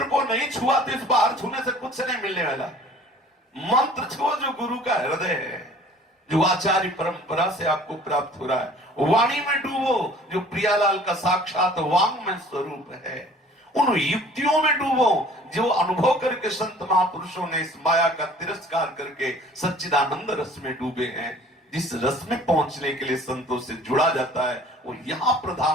को नहीं छुआ तो इस बाहर छूने से कुछ नहीं मिलने वाला। मंत्र छुओ जो गुरु का हृदय है, जो आचार्य परंपरा से आपको प्राप्त हो रहा है। वाणी में डूबो जो प्रियालाल का साक्षात वांग में स्वरूप है। उन युक्तियों में डूबो जो अनुभव करके संत महापुरुषों ने इस माया का तिरस्कार करके सच्चिदानंद रस में डूबे हैं। जिस रस में पहुंचने के लिए संतों से जुड़ा जाता है, वो यहां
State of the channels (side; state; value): both; normal; correlation 0.50